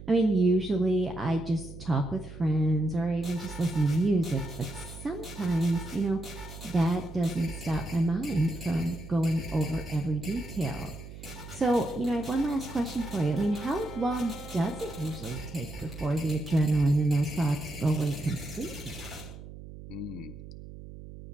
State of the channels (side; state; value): right; noise; hum, 14 dB below the sound